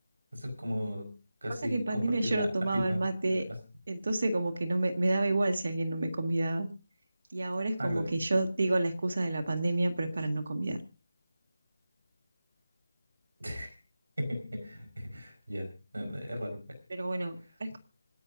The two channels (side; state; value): both; inverted; correlation -0.95